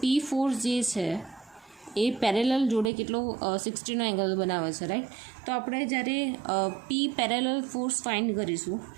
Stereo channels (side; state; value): left; drops out; at 2.9 s